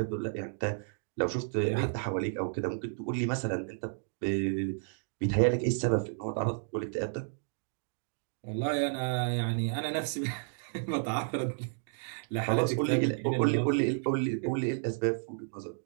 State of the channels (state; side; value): silent; left; digital silence